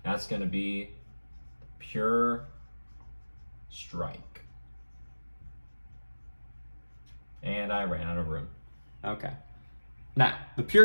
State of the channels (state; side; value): inverted; both; correlation -1.00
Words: That's going to be Pure Strike. And I ran out of room. Okay. Now, the